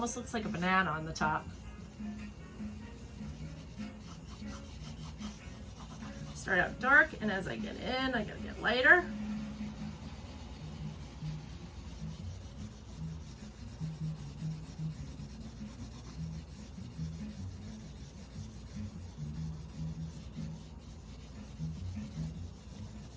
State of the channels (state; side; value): identical; both; correlation 1.00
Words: looks like a banana on the top. Start out dark, and as I get in, I gotta get lighter.